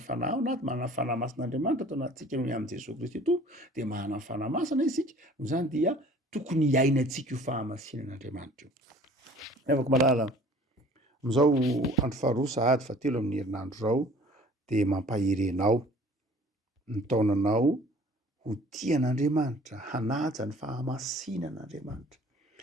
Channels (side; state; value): both; normal; correlation 0.50